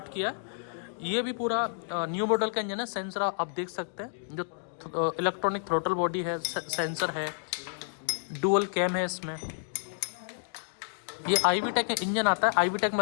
किया है। ये भी पूरा न्यू मॉडल का इंजन है। सेंसर आप देख सकते हैं, जो इलेक्ट्रॉनिक थ्रोटल बॉडी है, सेंसर है, डुअल कैम है इसमें। ये IVTEC इंजन आता है, IVTEC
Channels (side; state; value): right; silent; digital silence